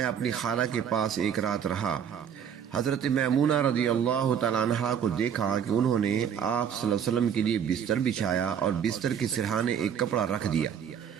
اپنی خالہ کے پاس ایک رات رہا۔ حضرت میمونہ رضی اللہ تعالی عنہا کو دیکھا کہ انہوں نے آپ صلی اللہ علیہ وسلم کے لیے بستر بچھایا اور بستر کے سرہانے ایک کپڑا رکھ دیا۔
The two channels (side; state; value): left; quieter; 8.2 dB